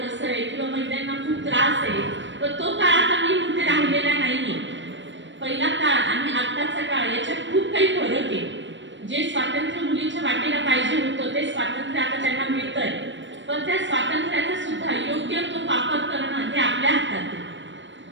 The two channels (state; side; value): late; left; 0.54 ms